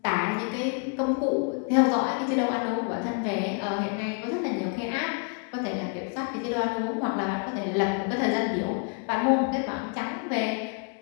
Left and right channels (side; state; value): right; quieter; 38.5 dB